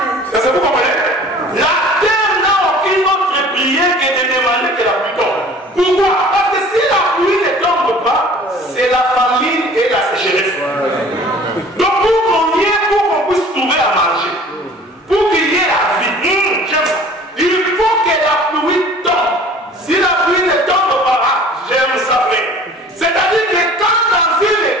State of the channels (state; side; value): normal; both; correlation 0.47